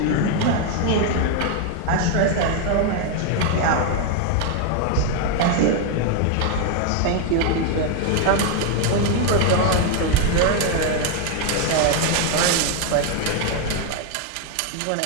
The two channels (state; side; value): different; both; correlation 0.01